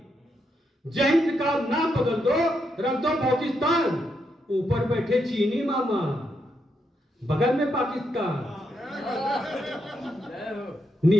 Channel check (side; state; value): both; normal; correlation 0.80